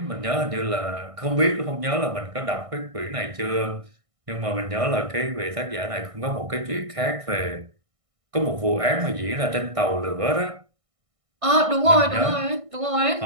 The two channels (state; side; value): late; left; 1.6 ms